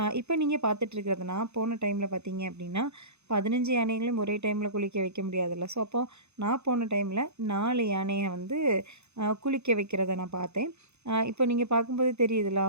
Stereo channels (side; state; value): left; late; 0.81 ms